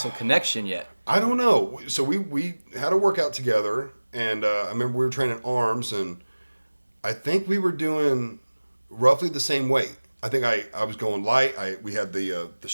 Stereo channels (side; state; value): both; inverted; correlation -1.00